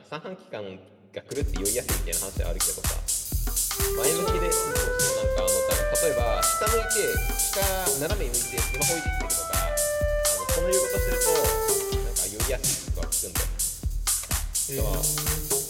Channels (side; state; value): both; identical; correlation 1.00